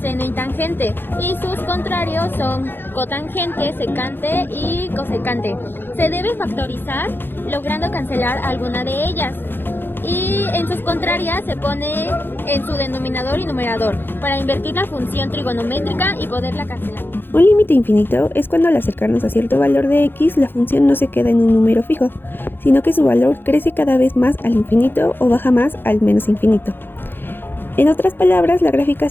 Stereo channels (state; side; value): late; right; 0.10 ms